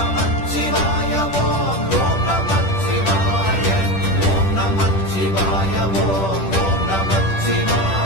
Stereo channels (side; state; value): right; late; 10 ms